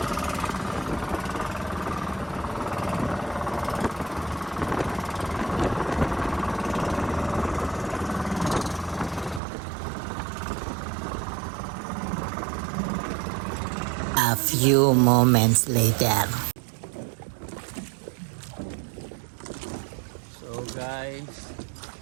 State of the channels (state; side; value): drops out; left; at 9.4 s